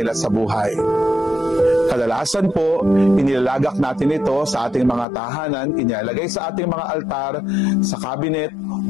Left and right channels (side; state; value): right; drops out; at 5.1 s